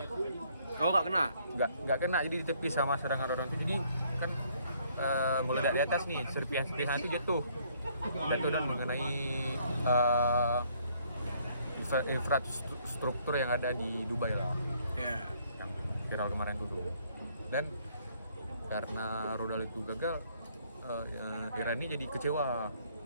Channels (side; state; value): both; inverted; correlation -0.65